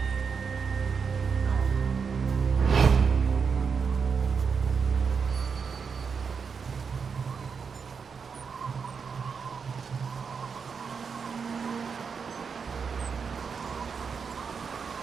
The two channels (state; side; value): quieter; left; 5.9 dB